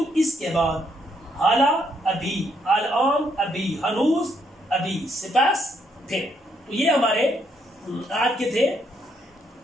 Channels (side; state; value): both; normal; correlation 0.73